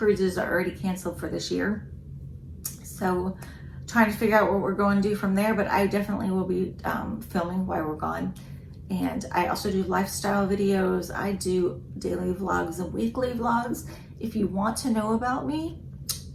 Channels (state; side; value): identical; both; correlation 1.00